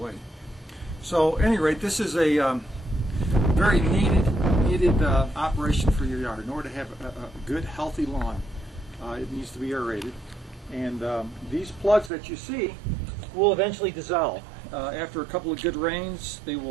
So at any rate, this is a very needed operation for your yard. In order to have a good, healthy lawn, it needs to be aerated. And these plugs that you see will eventually dissolve. After a couple of good rains, they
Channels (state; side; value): drops out; left; at 12.1 s